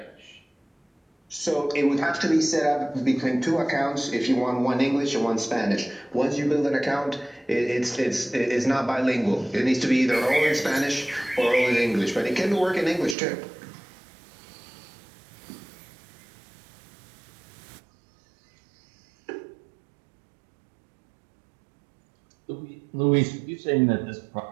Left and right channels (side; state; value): left; drops out; at 13.2 s